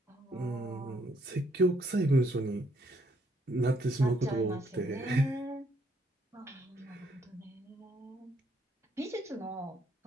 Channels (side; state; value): both; normal; correlation 0.70